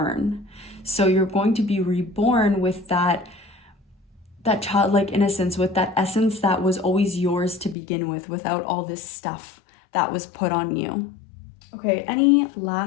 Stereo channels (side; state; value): right; drops out; at 7.8 s